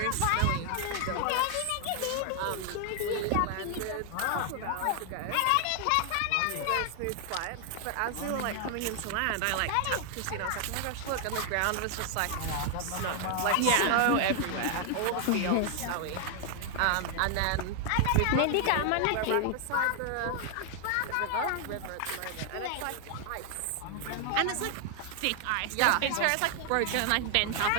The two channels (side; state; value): both; different; correlation 0.00